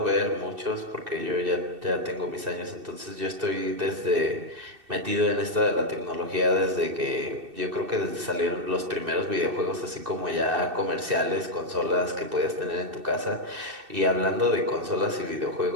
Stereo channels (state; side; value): late; left; 2.7 ms